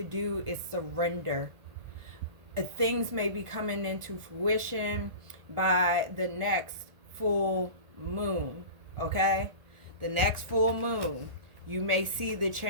do is surrender. Things may be coming into fruition by the next full moon. Okay? The next full moon, you may see the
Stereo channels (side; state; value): left; late; 1.4 ms